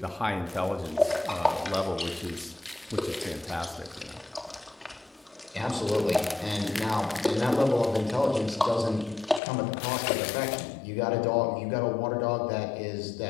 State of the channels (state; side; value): drops out; right; at 9.4 s